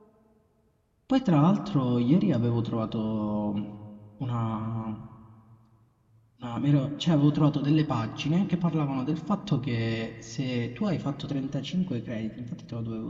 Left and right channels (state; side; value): identical; both; correlation 1.00